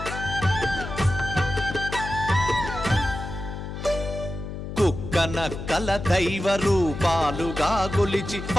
నక్కల దైవ రూపాలుగా గొలిచి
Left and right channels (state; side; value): noise; left; hum, 7 dB below the sound